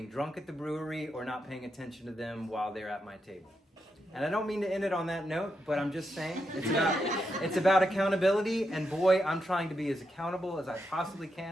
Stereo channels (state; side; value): normal; both; correlation 0.84